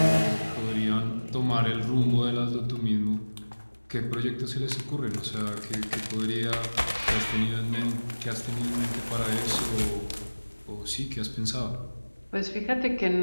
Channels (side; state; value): both; inverted; correlation -1.00